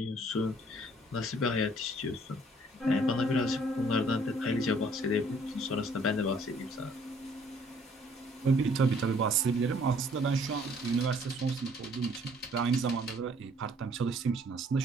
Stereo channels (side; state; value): both; normal; correlation 0.60